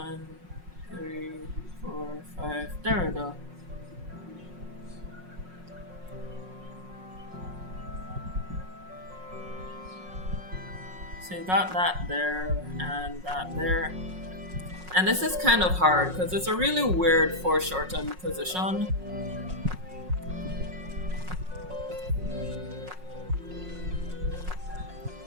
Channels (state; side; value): late; left; 5.5 ms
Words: 3, 4, 5. There we go. So you got that there and that there. And this is kind of hard because it's a really weird foreshortened position.